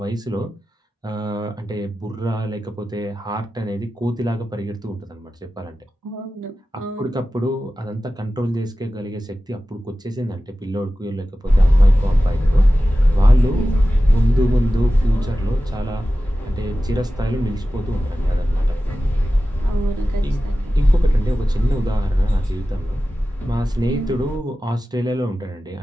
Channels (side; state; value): both; normal; correlation 0.95